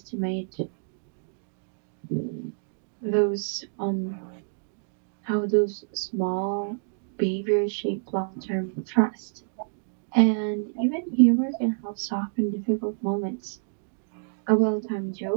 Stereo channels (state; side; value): silent; left; digital silence